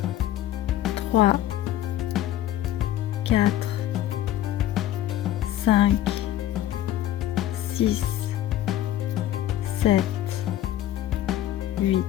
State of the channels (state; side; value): quieter; right; 12.8 dB